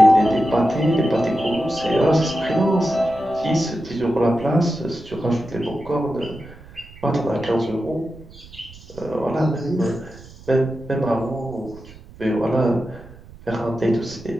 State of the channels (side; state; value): right; noise; rumble, 20 dB below the sound